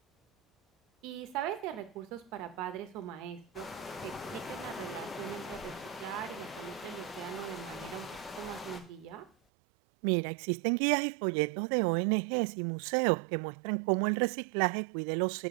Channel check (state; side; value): drops out; left; at 9.3 s